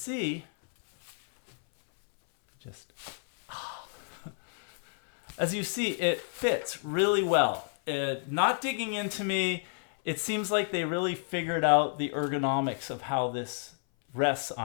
as you see, it fits really well. Not digging into me, it seems like they really figured out the ergonomics of how this rests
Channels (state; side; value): silent; right; 58 dB below the other